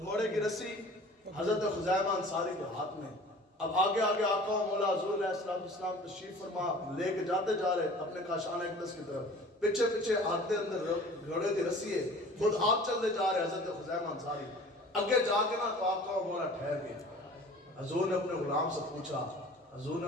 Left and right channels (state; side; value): normal; both; correlation 0.45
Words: کی رسی حضرت خزیمہ انصاری کے ہاتھ میں، اب آگے آگے آقا و مولا حضور علیہ السلام تشریف فرما لے کے جاتے جا رہے اپنے کاشان اقدس کی طرف، پیچھے پیچھے ہاتھ دے اندر گھوڑے کی رسی ہے، خود آپ چلتے جا رہے حضرت خزیمہ انصاری، اگے جا کے نا تو آقا و مولا ٹھہر گئے، حضور نے اپنے غلام سے پوچھا، حضور نے